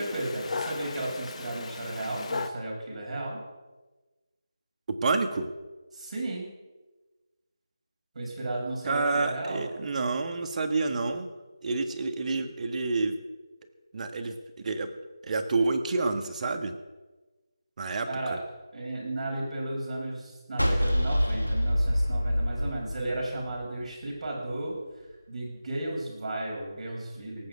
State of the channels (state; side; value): inverted; both; correlation -0.88